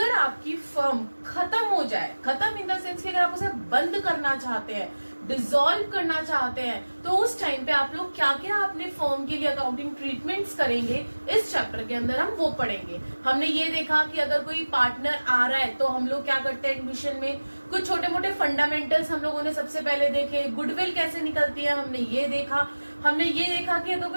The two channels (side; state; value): both; inverted; correlation -1.00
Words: आपकी फर्म खत्म हो जाए, खत्म इन द सेंस कि अगर आप उसे बंद करना चाहते हैं, डिसॉल्व करना चाहते हैं, तो उस टाइम पे आप लोग क्या क्या अपने फर्म के लिए अकाउंटिंग ट्रीटमेंट्स करेंगे, इस चैप्टर के अंदर हम वो पढ़ेंगे। हमने ये देखा कि अगर कोई पार्टनर आ रहा है तो हम लोग क्या करते हैं एडमिशन में, कुछ छोटे मोटे फंडामेंटल्स हम लोगों ने सबसे पहले देखे, गुडविल कैसे निकलती है हमने ये देखा। हमने ये देखा कि अगर